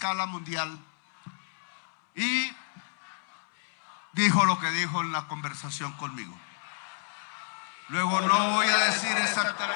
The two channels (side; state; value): right; silent; 58 dB below the other